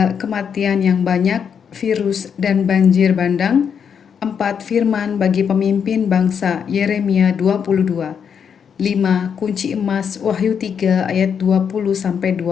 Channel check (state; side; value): quieter; right; 7.3 dB